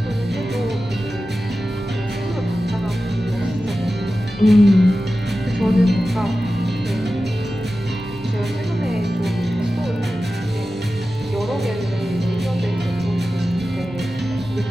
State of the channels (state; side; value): normal; both; correlation 0.94